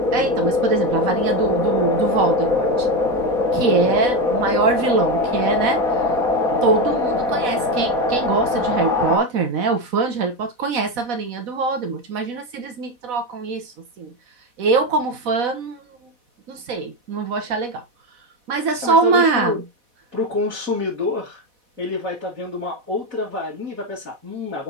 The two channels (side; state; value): left; late; 4.1 ms